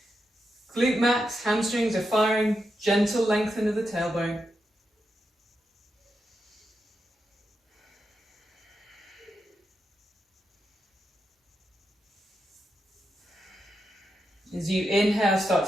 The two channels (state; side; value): normal; both; correlation 0.86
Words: Glute max, hamstrings are firing, gentle lengthen of the tailbone. As you inhale, start